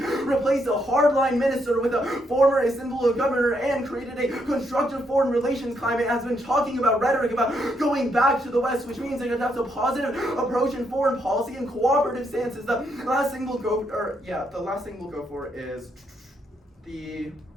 replaced a hardline minister with a former Istanbul governor and created a constructive foreign relations climate, has been talking about rhetoric about going back to the West, which means that that's a positive approach in foreign policy and cooperative stances. The last thing we'll go for is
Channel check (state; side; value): normal; both; correlation 0.76